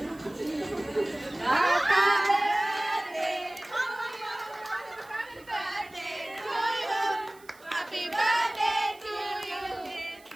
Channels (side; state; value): right; noise; hiss, 26 dB below the sound